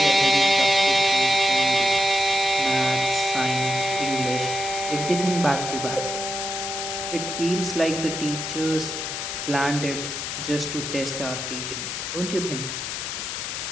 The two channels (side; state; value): left; noise; hiss, 4 dB below the sound